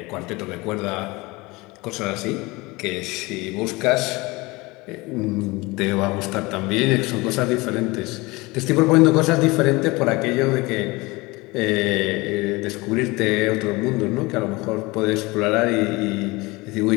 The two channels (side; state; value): right; quieter; 23.3 dB